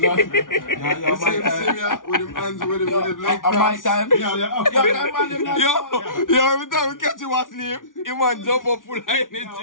my time. With him hands with him like My time. Yeah. Yo, every time we catch you asleep, you man jump up full of energy. My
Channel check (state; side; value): late; right; 0.88 ms